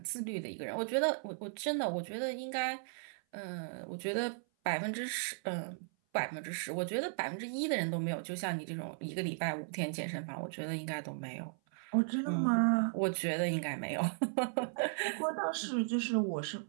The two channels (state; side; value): silent; left; 54 dB below the other